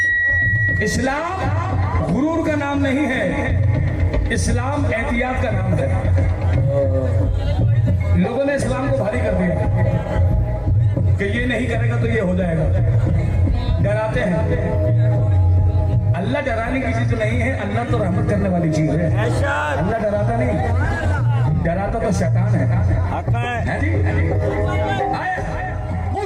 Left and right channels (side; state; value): both; identical; correlation 1.00